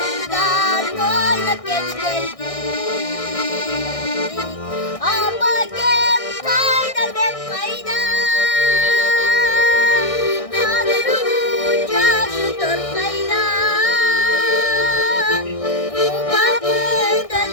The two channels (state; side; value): late; right; 1.6 ms